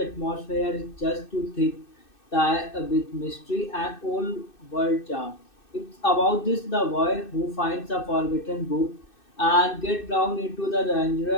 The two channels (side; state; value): right; late; 2.6 ms